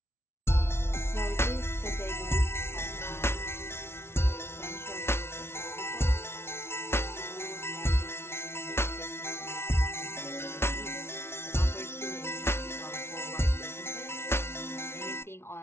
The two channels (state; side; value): late; right; 0.12 ms